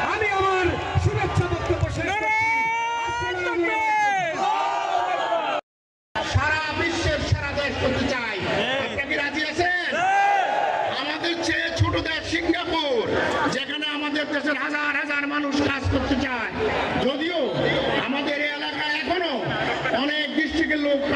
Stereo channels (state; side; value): identical; both; correlation 1.00